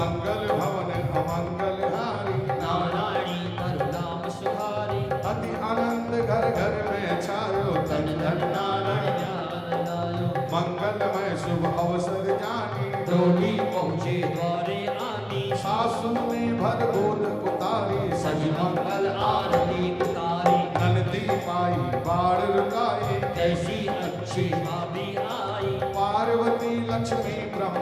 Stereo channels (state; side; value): identical; both; correlation 1.00